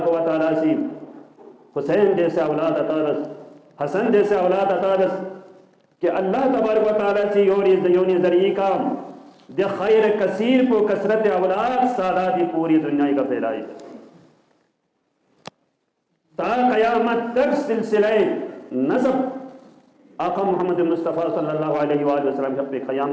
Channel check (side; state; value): both; identical; correlation 1.00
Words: و تعالیٰ سے حسین جیسے اولاد عطا بس حسن جیسے اولاد عطا بس کہ اللہ تبارک و تعالیٰ سے یونی ذریعی کا دے خیر کثیر کو کثرت اولاد ساداتی پوری دنیا کا پھیلائی تا قیامت تک سلسلہ نسب آقا محمد مصطفیٰ صلی اللہ علیہ وآلہ وسلم جب پہ